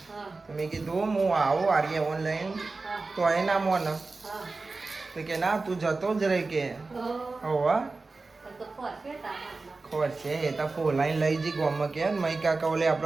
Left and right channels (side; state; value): left; quieter; 3.7 dB